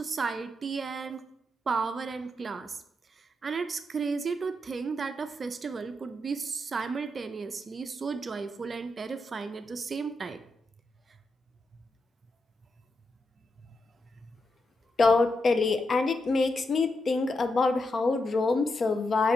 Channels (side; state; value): both; normal; correlation 0.85